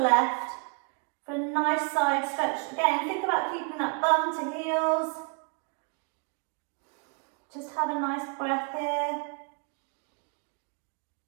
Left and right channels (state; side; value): quieter; left; 37.6 dB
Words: for a nice side stretch. Again, think about keeping that bum to heels. Just have a nice breath here.